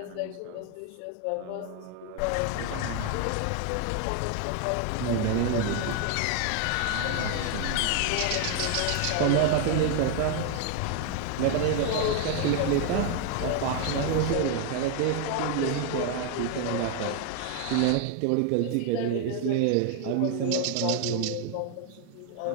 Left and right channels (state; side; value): different; both; correlation 0.01